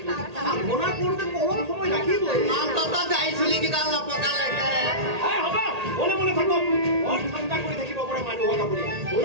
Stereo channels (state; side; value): late; left; 1.8 ms